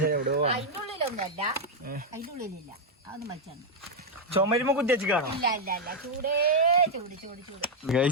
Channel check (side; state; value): both; normal; correlation 0.00